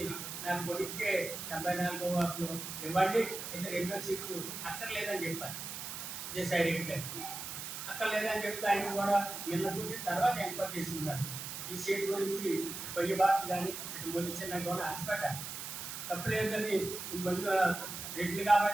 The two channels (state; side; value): noise; right; hiss, 7 dB below the sound